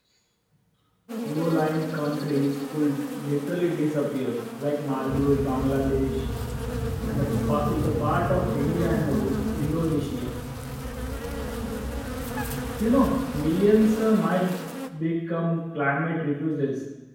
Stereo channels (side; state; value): both; identical; correlation 1.00